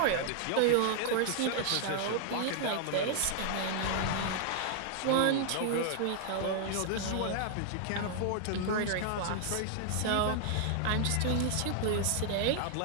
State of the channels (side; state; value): both; different; correlation -0.01